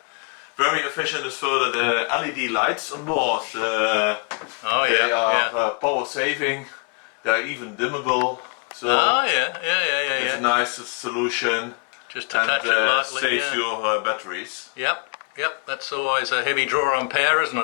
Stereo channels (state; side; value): quieter; right; 35.7 dB